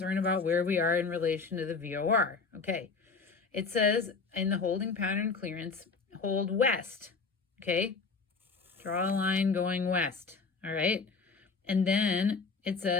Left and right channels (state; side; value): quieter; right; 4.6 dB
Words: about where we are in relation to the VOR. Okay, it says in the holding pattern clearance, hold west. Okay, draw a line going west. All right, and then it